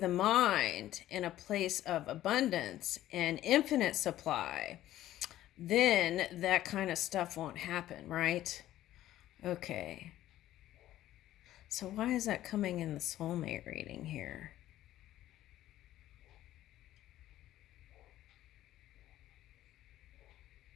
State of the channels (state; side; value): quieter; right; 13.7 dB